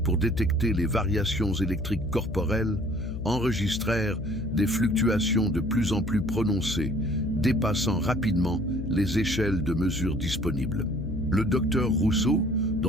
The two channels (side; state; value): left; noise; hum, 5 dB below the sound